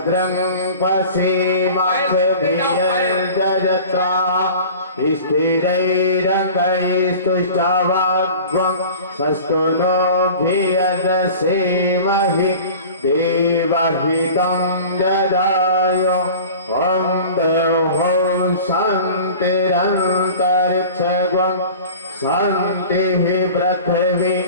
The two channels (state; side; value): inverted; both; correlation -0.40